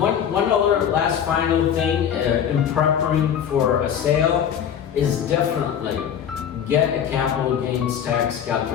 other last final thing in preparing for a sale is definitely get a capital gains tax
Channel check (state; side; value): quieter; right; 8.8 dB